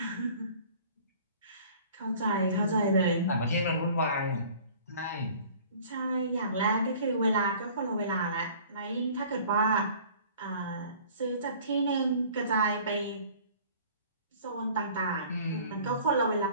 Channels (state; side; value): inverted; both; correlation -0.49